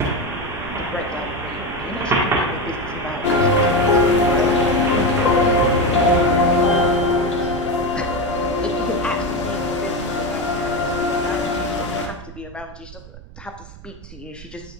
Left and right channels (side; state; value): right; noise; rumble, 18 dB below the sound